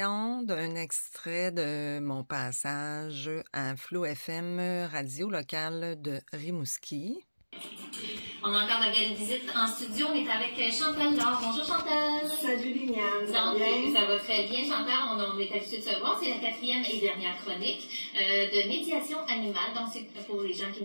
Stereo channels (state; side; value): inverted; both; correlation -1.00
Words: d'un extrait de mon passage à Flow FM, radio locale de Rimouski. On a encore la belle visite en studio. On est avec Chantal Laure. Bonjour Chantal. Salut Liliane. Ça va très bien Chantal. On est habitué de se voir. C'est la 4e et dernière chronique de médiation animale. Donc c'est pour les gens qui